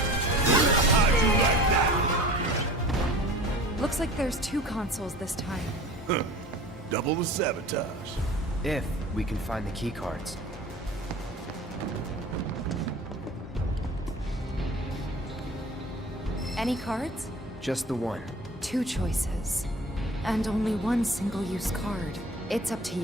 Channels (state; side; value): normal; both; correlation 0.41